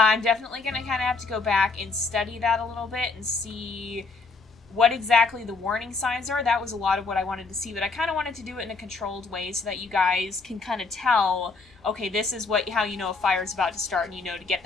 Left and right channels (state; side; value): quieter; right; 4.2 dB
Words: definitely going to kind of have to go back and study that a little bit and see what exactly the warning signs are. That was a lot of what I wanted to see, but I kind of wanted to do it in a controlled way so that you guys can kind of tell, okay, this is how you know a fire's about to start and you know to get